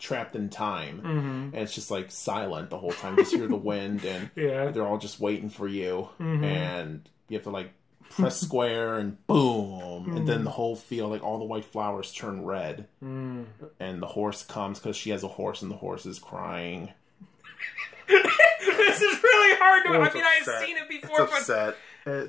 time, and it's just like silent the whole time. Just hear the wind, and they're all just waiting for you, and you have to like press square and boom, and then the whole field, like all the white flowers turn red, and the horse comes because she has a horse, and the horse is crying. This is really hard to... I mean, I've seen it before, it's upset.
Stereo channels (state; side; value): quieter; right; 4.6 dB